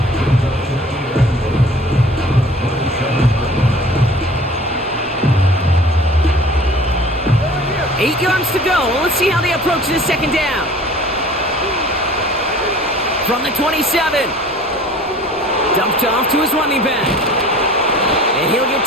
Eight yards to go. Let's see how they approach this 2nd down. From the 27. Dumped off to his running back. And he'll get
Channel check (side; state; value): both; normal; correlation 0.47